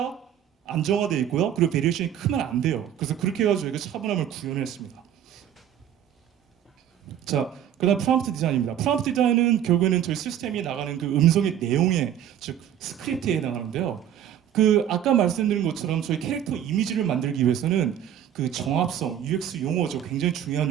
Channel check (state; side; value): quieter; left; 10.2 dB